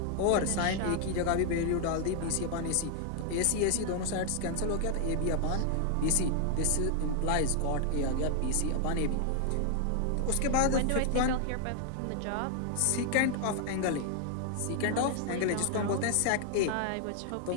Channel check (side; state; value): both; different; correlation 0.00